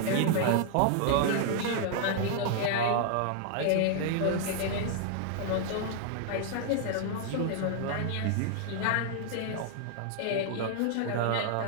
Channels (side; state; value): both; different; correlation 0.00